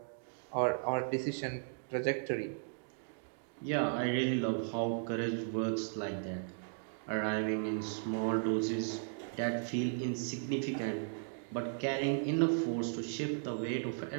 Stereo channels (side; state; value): left; silent; digital silence